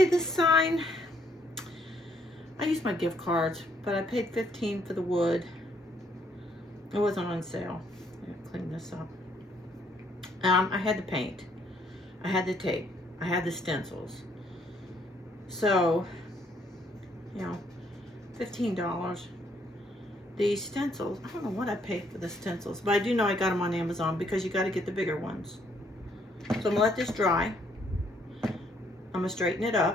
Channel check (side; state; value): both; normal; correlation 0.68